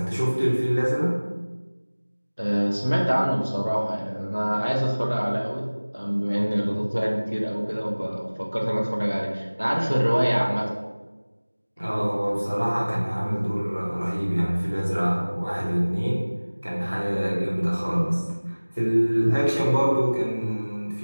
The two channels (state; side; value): inverted; both; correlation -1.00